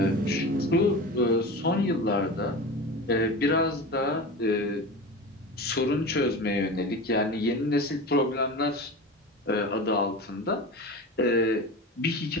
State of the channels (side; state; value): both; normal; correlation 0.29